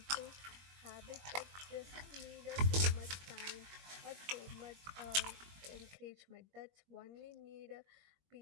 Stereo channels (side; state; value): left; late; 21 ms